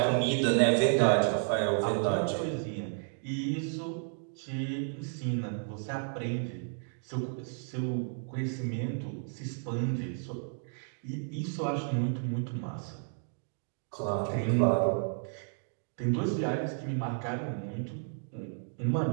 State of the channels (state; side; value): silent; left; digital silence